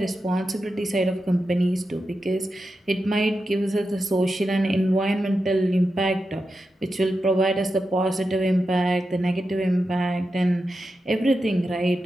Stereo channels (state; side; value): normal; both; correlation 0.89